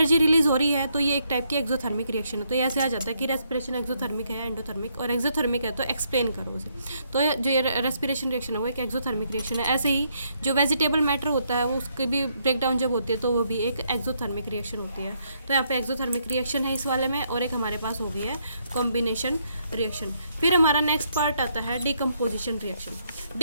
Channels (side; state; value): both; inverted; correlation -0.74